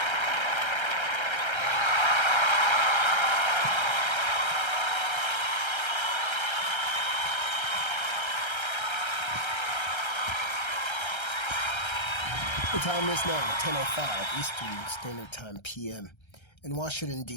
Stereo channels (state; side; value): late; right; 1.3 ms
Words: The time is now 10:05 Eastern Standard Time PM in Washington,